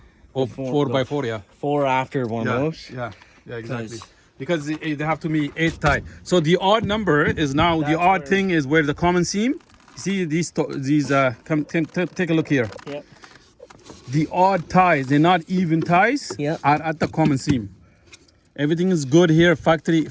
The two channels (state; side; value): identical; both; correlation 1.00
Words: 4x4, yeah. 4 after one of those. Yeah, exactly. Because they have to be 8 tie. So the odd number is now the odd thing is where the common seam. See these come take a look here. Yep. The odd ties, they're not even ties, Yep. are at the common seam. Everything is good here, factory